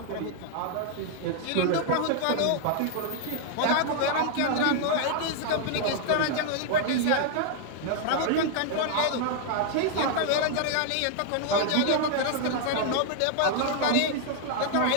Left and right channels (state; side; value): different; both; correlation 0.00